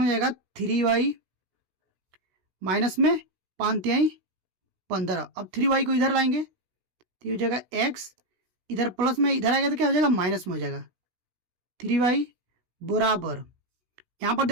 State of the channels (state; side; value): late; left; 16 ms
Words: जाएगा 3y माइनस में 5 तिहाई 15। अब 3y को इधर लाएंगे तो हो जाएगा x इधर प्लस में इधर आएगा तो क्या हो जाएगा, माइनस में हो जाएगा। 3y बराबर, यहाँ पर